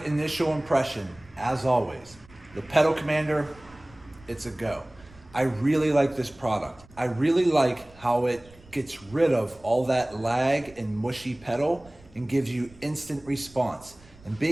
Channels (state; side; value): noise; right; rumble, 24 dB below the sound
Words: initial impression, as always, the pedal commander, it's a go. I really like this product. I really like how it gets rid of all that lag and mushy pedal and gives you instant response. And